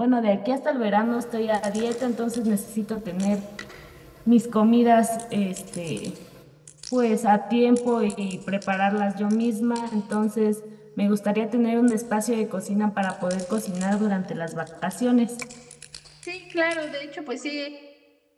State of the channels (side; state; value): both; identical; correlation 1.00